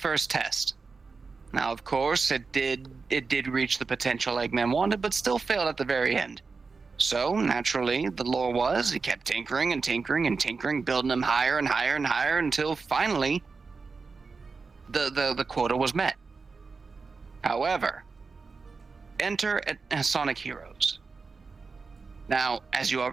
test. Now, of course, it did reach the potential Eggman wanted, but still failed at the very end. So, naturally, the lore was, he kept tinkering and tinkering and tinkering, building him higher and higher and higher until finally the quota was met. However, enter Sonic Heroes. Now, as you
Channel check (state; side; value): quieter; left; 4.6 dB